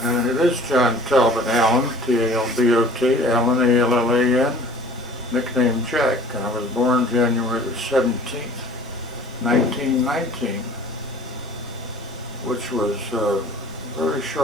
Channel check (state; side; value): normal; both; correlation 0.48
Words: And it is John Talbot Allan, T-A-L-B-O-T, Allan, A-L-L-A-N, nicknamed Jack. And I was born January the 17th, 1919, which was very